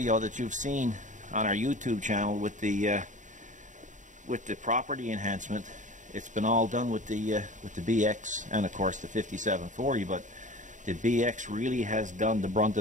that you've seen on our YouTube channel with the property enhancement, it's been all done with the BX and of course the 5740. But the BX really has done the brunt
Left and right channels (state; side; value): late; left; 0.36 ms